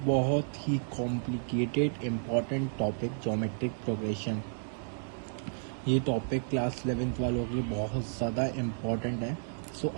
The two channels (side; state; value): left; silent; digital silence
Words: बहुत ही complicated important topic, geometric progression. ये टॉपिक क्लास 11th वालों के लिए बहुत ज़्यादा इम्पॉर्टेंट है। सो